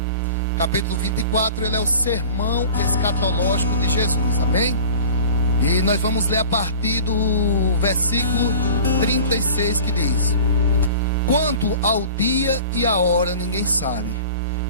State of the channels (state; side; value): inverted; both; correlation -0.41